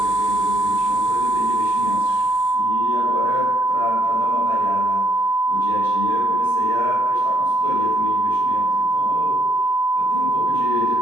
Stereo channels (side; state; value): both; normal; correlation 0.72